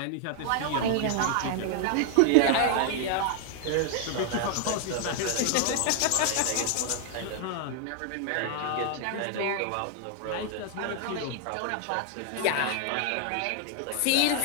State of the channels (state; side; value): different; both; correlation 0.00